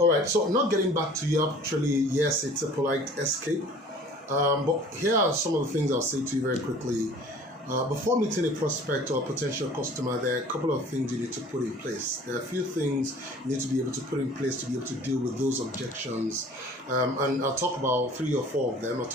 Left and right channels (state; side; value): normal; both; correlation 0.48